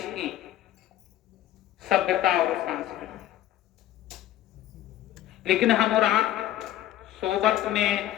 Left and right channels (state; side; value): quieter; right; 13.0 dB